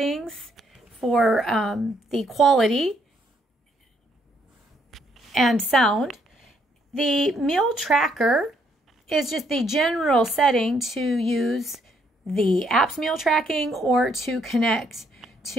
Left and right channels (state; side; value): normal; both; correlation 0.71